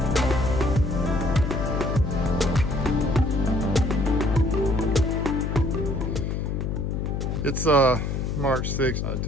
It's March 6th,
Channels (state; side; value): noise; left; hum, 2 dB below the sound